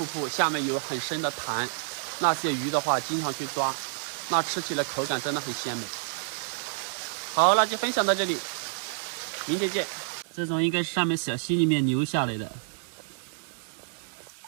布，下面有很深的潭，那些鱼的话经常去抓，那吃起来口感真的很鲜美。好，那就分享到这里，明天见。这种应该是上面小溪里面流下来的，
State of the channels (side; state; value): left; silent; 59 dB below the other